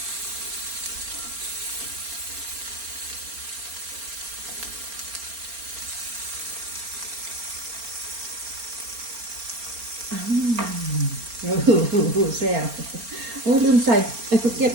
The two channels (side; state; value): left; late; 4.3 ms